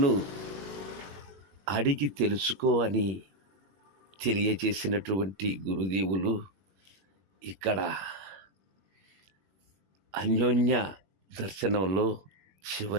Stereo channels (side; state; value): left; late; 21 ms